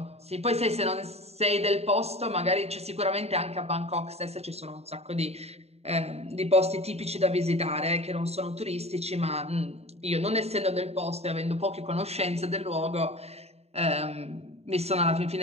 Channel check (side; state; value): left; late; 0.30 ms